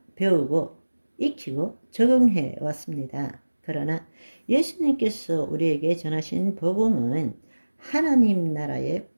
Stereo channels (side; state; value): both; inverted; correlation -1.00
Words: 배우고 익히고 적응해 왔습니다. 그러나 예수님께서 우리에게 전하신 복음은 하나님 나라의